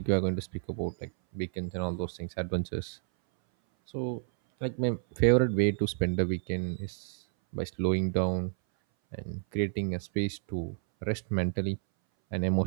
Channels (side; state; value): left; silent; 58 dB below the other